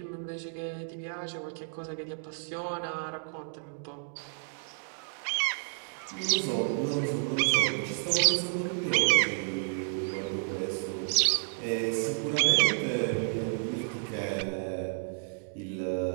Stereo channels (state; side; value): silent; left; digital silence